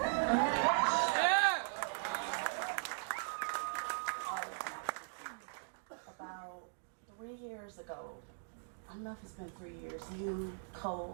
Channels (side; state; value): left; silent; digital silence